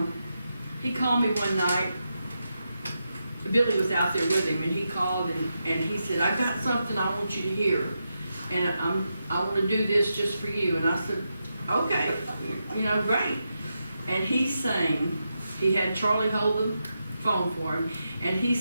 he called me one night. Billy was out there with him, and he called and he said, I've got something I want you to hear, and I want to do this just for you. And I said, okay, you know, great. And he sang, he had Charlie hold the phone for him, and he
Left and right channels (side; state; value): both; inverted; correlation -0.86